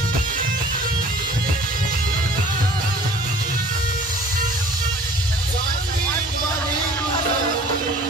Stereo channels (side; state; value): both; normal; correlation 0.49